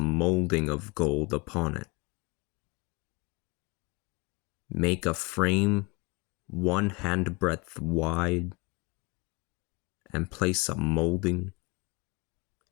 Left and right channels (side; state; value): right; quieter; 26.5 dB